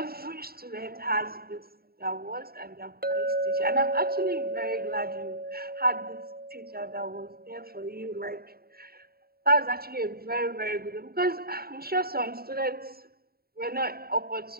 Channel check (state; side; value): late; left; 0.45 ms